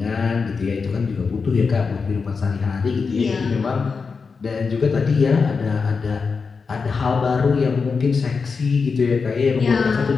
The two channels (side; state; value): right; quieter; 5.0 dB